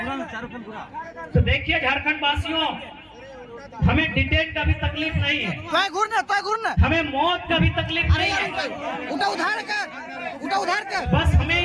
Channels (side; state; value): both; identical; correlation 1.00